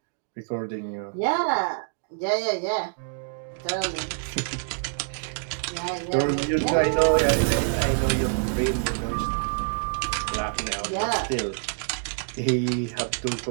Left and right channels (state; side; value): silent; left; digital silence